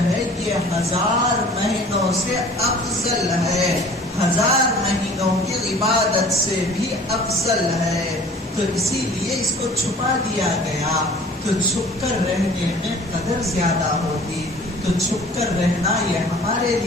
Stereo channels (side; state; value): both; normal; correlation 0.47